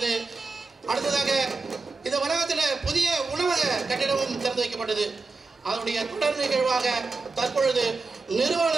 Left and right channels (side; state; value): left; quieter; 3.9 dB